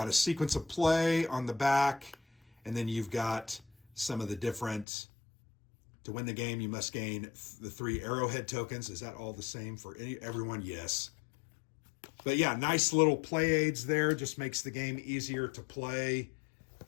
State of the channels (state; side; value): drops out; right; at 4.9 s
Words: a sequence of play on the back, and then you've got some of the different, to win the game, you must gain the 3 arrowhead tokens. Is that all the same for everyone? Yes. But yeah, nice little play aids there. Just makes the game easier to play.